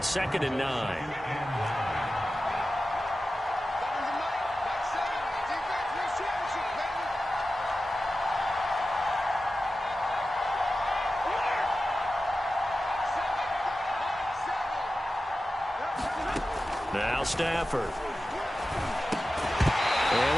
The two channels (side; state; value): both; normal; correlation 0.94